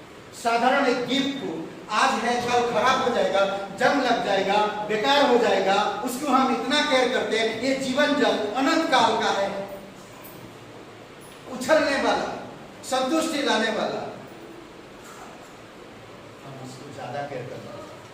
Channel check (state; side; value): identical; both; correlation 1.00